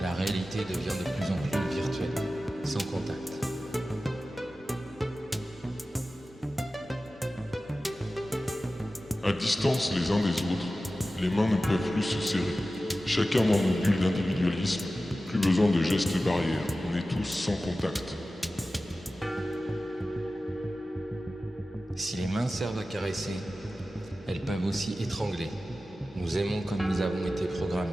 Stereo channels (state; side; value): normal; both; correlation 0.95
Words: La réalité devient de plus en plus virtuelle, sans contact. À distance les uns des autres, les mains ne peuvent plus se serrer. Chacun dans nos bulles d'individualisme, plus besoin de gestes barrières, on est tous sans contact. Si les mains servent à caresser, elles peuvent aussi étrangler. Nous aimons comme nous avons été programmés.